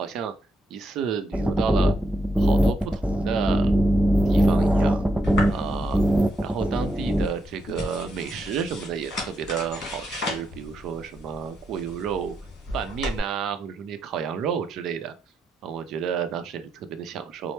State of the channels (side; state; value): both; normal; correlation 0.81